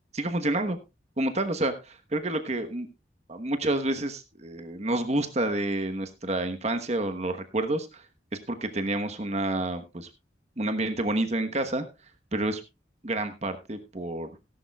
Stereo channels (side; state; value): both; normal; correlation 0.48